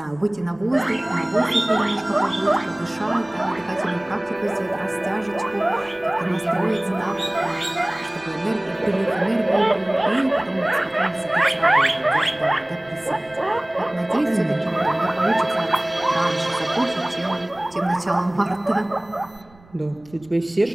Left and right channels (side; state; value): right; noise; rumble, 27 dB below the sound